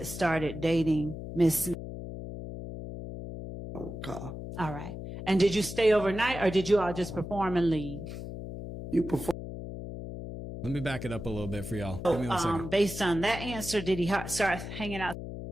started dating Miss Smith? Okay. All right. And did you stay overnight, or did you all just perform and leave? You perform. Let me back it up a little bit for y'all. Give me 1 second. Based on that answer, did he start hanging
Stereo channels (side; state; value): left; noise; hum, 9 dB below the sound